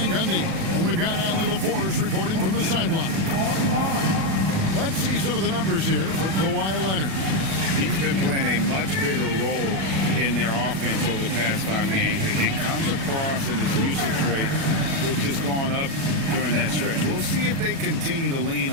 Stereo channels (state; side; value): late; left; 37 ms